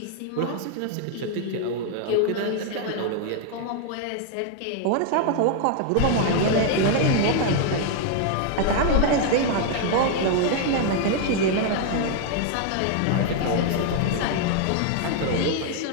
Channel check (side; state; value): both; different; correlation 0.00